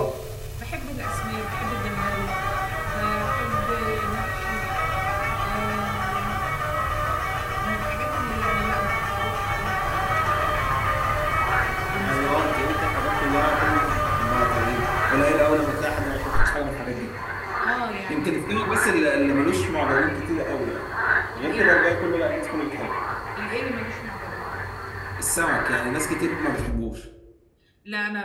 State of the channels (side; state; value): both; identical; correlation 1.00